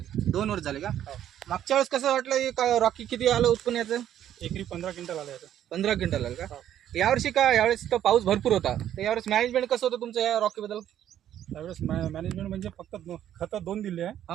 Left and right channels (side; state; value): left; quieter; 11.0 dB